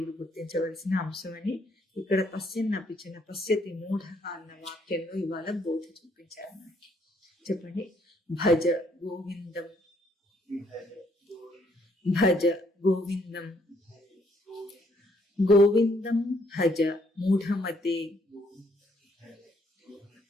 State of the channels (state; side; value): normal; both; correlation 0.69